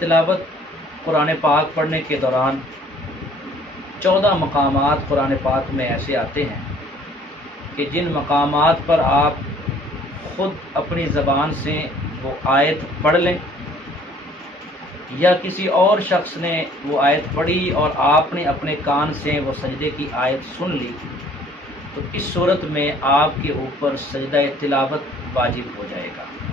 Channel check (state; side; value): normal; both; correlation 0.57